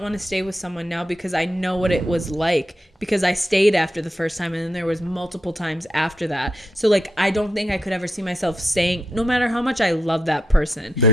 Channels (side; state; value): both; normal; correlation 0.82